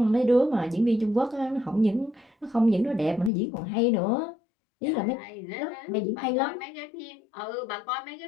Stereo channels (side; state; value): right; drops out; at 3.3 s